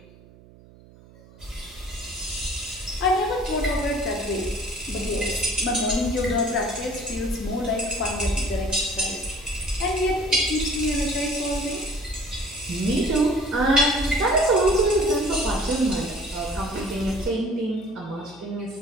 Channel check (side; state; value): right; noise; hum, 23 dB below the sound